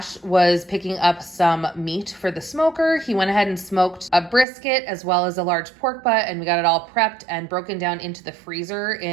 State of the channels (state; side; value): drops out; left; at 4.5 s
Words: was picking up some meat for the smoker. He went ahead and smoked a brisket as well as a large pork butt, and we got it all prepped and broken down into the freezer